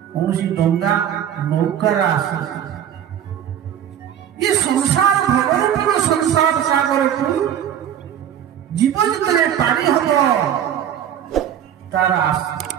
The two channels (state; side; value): quieter; left; 9.9 dB